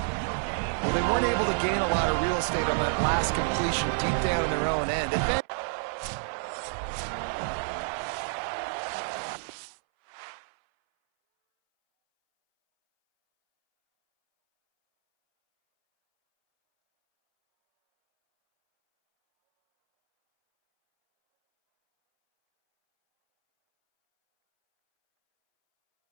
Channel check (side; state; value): left; silent; 59 dB below the other